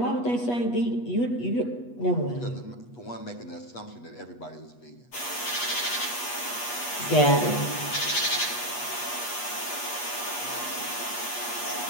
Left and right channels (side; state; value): right; late; 8.3 ms